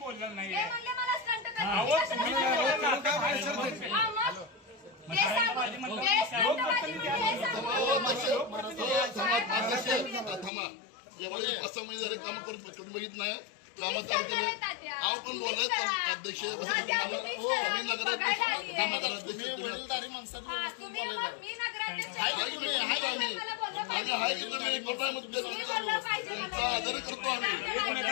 नाही एवढे 5-6 महिने झाले काम करून तुम्ही बघित नाही कामात आव पण बोलत अध्यक्ष वडीलधारी माणसात आदर करतो आम्ही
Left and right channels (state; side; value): drops out; right; at 10.5 s